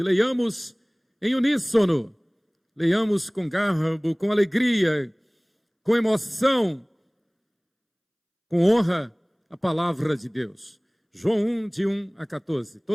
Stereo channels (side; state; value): both; identical; correlation 1.00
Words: Leiamos em uníssono, leiamos com garbo, com alegria, com emoção, com honra, a palavra de Deus. João 1, de 1 a 14.